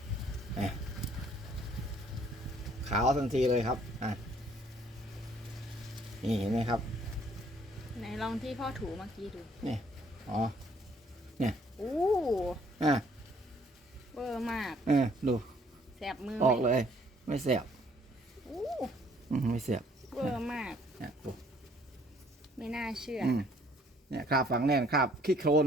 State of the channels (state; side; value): normal; both; correlation 0.62